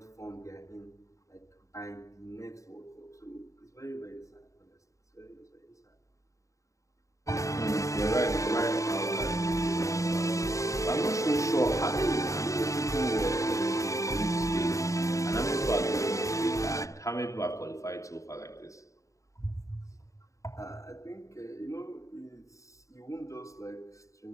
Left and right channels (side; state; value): right; late; 0.15 ms